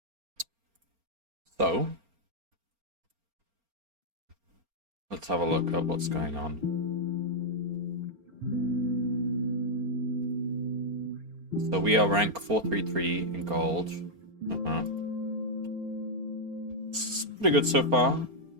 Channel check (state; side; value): late; left; 4.3 ms